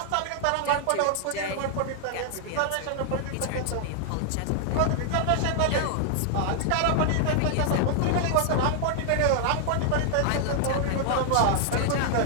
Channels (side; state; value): both; different; correlation -0.01